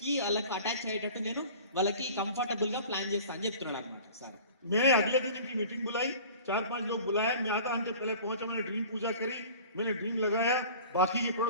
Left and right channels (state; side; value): inverted; both; correlation -0.42